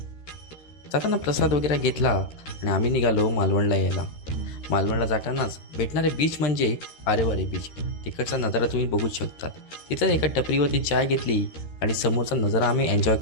जाताना प्रसाद वगैरे घेतला आणि आम्ही निघालो मालवणला यायला. मालवणला जातानाच भेटणारे बीच म्हणजे आरेवारे बीच. तिकडचा नजारा तुम्ही बघू शकता. तिथं एका टपरीवरती चाय घेतली आणि समोरचा नजारा आम्ही एन्जॉय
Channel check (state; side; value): late; right; 13 ms